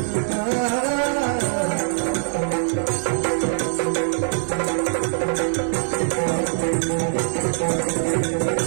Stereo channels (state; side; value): silent; left; 64 dB below the other